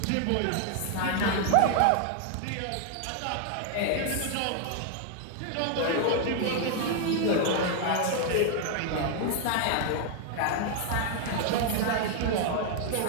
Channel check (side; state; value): both; different; correlation 0.00